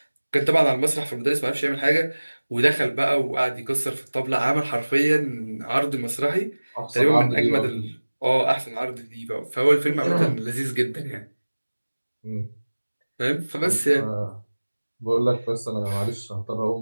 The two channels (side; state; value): both; inverted; correlation -1.00